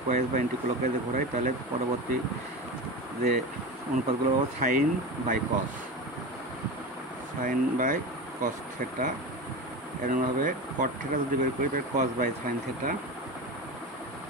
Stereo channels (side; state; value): both; normal; correlation 0.25